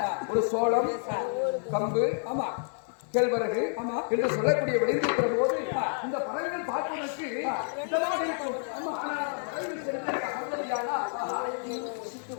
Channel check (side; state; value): right; silent; 58 dB below the other